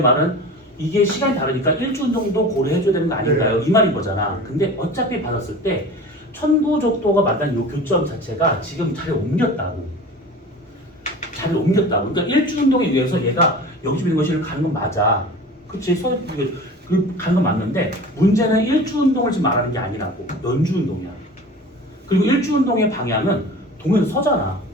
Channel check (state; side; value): normal; both; correlation 0.38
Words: 말은 이게 시간이 다르니까 일주 운동도 고려해줘야 되는 거 아닌가요? 이 말인 거잖아. 근데 어차피 받았을 때 천구적도가 만난 이 교점 자체가 지금 자리를 옮겼다고. 그러니까 일주 운동에 의해서 얘가 여기서 있는 것이 가는 건 맞아. 그치? 가는 건 맞는데 문제는 일주 운동을 지금 말하는 게 아니라고. 연주 운동이야. 그리고 일주 운동의 방향은 동에서 서잖아.